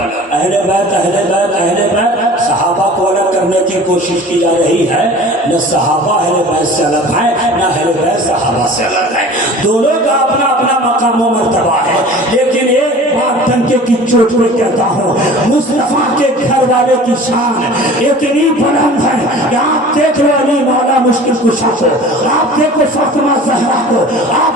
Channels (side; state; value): both; normal; correlation 0.42